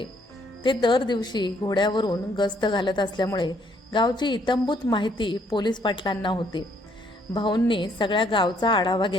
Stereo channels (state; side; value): normal; both; correlation 0.67